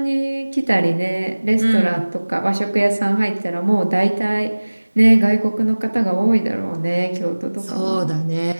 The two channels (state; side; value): inverted; both; correlation -1.00